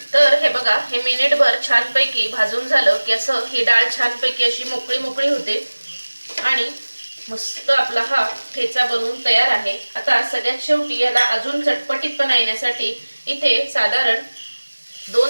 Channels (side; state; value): both; inverted; correlation -1.00